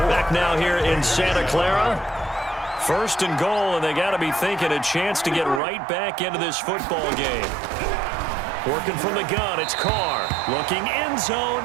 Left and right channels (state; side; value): drops out; left; at 5.6 s